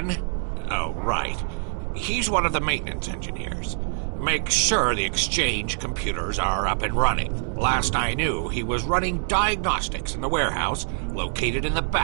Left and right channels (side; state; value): left; silent; 62 dB below the other